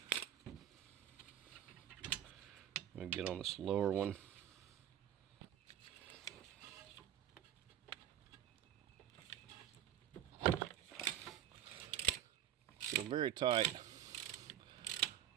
I'm going to get on this lower one. So very tight.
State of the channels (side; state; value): left; quieter; 11.1 dB